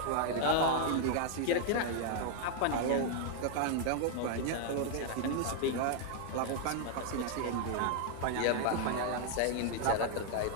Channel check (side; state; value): both; different; correlation 0.00